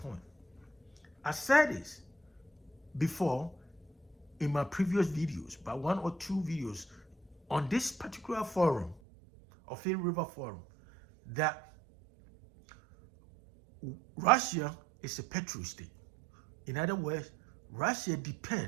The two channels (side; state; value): left; drops out; at 9.0 s